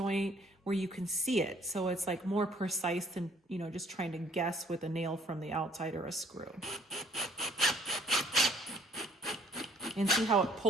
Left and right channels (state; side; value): normal; both; correlation 0.60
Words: where you can see it. So it's like more precise than, you know, just trying to guess with a nail from the outside or a screw. And see how it